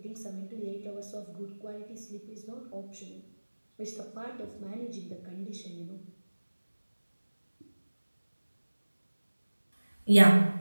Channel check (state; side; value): inverted; both; correlation -1.00